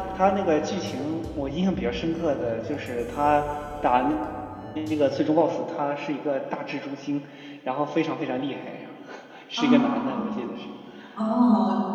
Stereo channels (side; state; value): both; identical; correlation 1.00